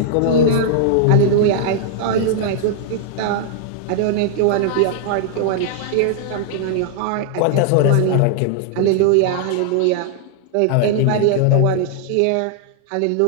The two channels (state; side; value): different; both; correlation -0.01